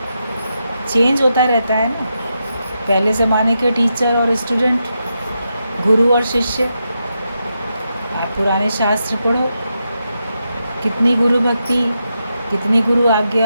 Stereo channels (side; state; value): both; inverted; correlation -0.85